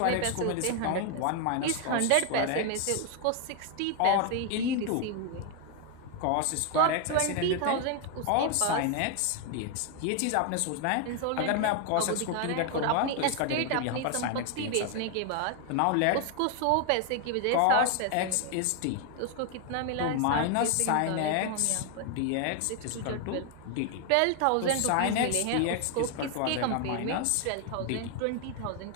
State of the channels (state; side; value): different; both; correlation 0.01